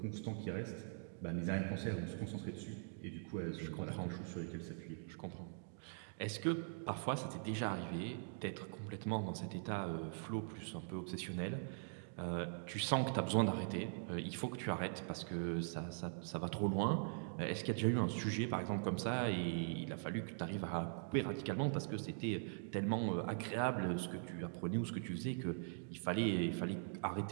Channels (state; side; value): silent; left; digital silence